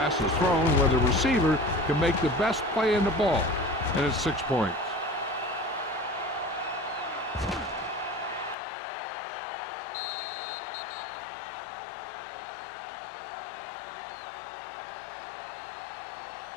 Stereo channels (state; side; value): drops out; right; at 8.6 s